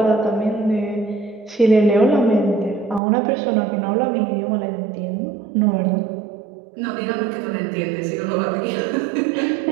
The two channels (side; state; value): left; drops out; at 3.0 s